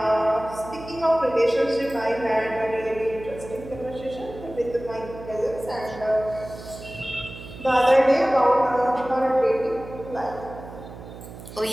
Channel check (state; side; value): noise; right; hum, 14 dB below the sound